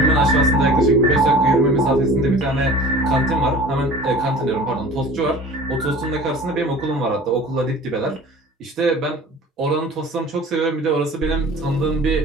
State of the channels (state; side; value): normal; both; correlation 0.42